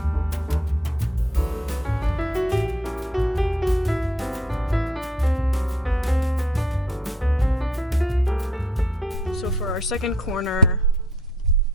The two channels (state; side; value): normal; both; correlation 0.66